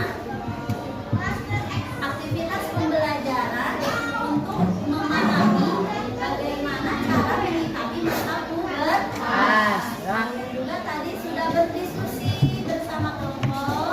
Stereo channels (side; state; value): both; identical; correlation 1.00